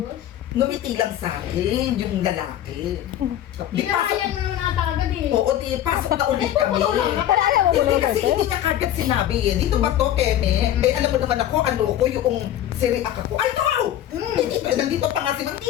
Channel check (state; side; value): quieter; right; 11.8 dB